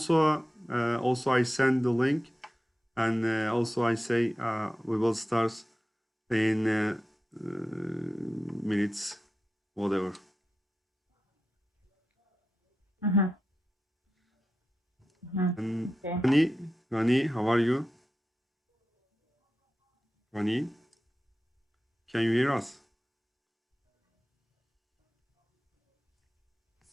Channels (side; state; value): both; normal; correlation 0.91